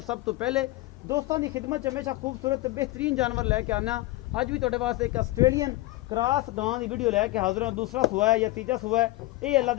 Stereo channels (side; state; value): right; quieter; 18.7 dB